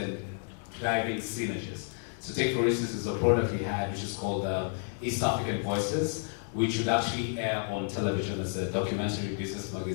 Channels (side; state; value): right; silent; 57 dB below the other